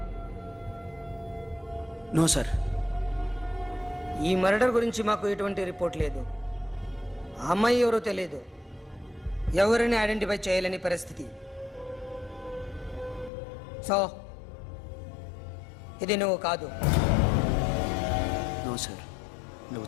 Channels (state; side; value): drops out; right; at 13.3 s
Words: No sir. ఈ మర్డర్ గురించి మాకు ఎటువంటి రిపోర్ట్ లేదు. ఆ అమ్మాయి ఎవరో తెలియదు. ఎవరిని ఐడెంటిఫై చేయలేని పరిస్థితి. సో ఇది నువ్వు కాదు. No sir. నువ్వు